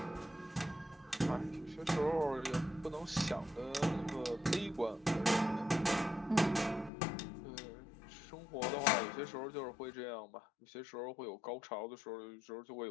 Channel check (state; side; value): drops out; right; at 6.9 s